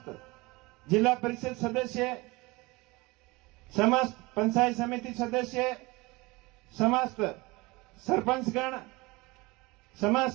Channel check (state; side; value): quieter; left; 23.5 dB